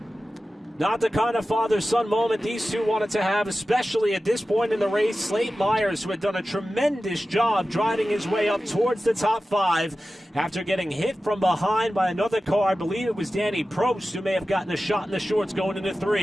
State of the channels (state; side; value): normal; both; correlation 0.94